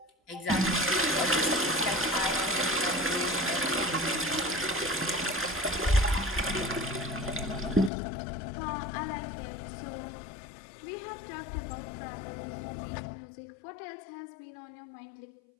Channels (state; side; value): drops out; right; at 7.9 s